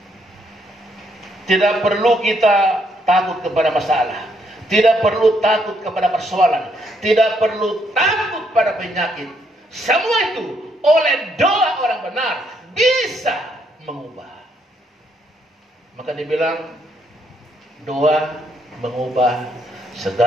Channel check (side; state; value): both; normal; correlation 0.73